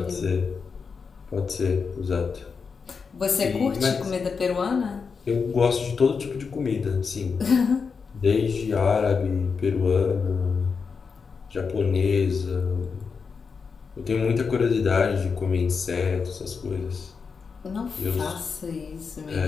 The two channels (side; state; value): right; quieter; 5.4 dB